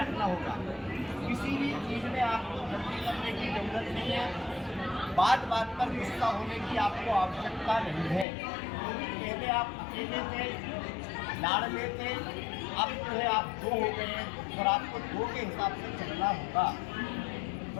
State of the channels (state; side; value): drops out; right; at 8.2 s